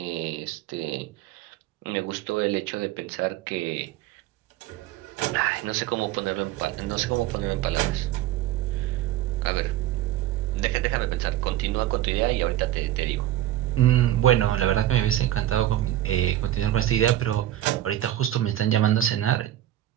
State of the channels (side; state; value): left; quieter; 13.4 dB